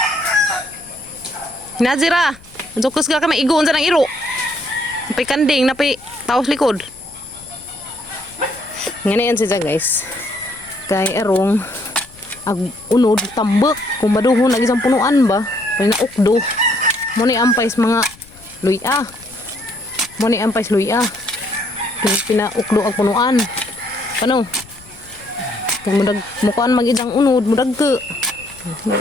Nazira. Jokus ka kami igoon sa ng iro. Napay kanding, napay taos likod. Ngayon siya guys. Kay erong ag unod tambak kung maduhon lagi sa punuan ba. Kay na ukdo. Mo ni ampais mga luya. Mo ni ampais luya. Pinaukdo ang punuan. Ano? Kung mudag mukuan magidang unod, mudag ke.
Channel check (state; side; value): noise; left; rumble, 24 dB below the sound